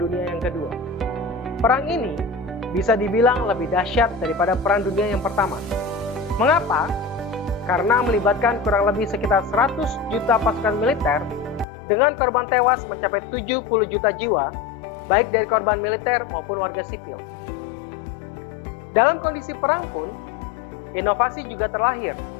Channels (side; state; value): right; drops out; at 11.7 s